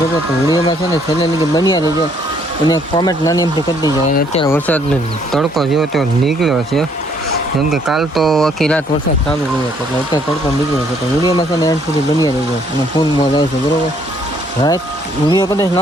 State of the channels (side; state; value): both; normal; correlation 0.65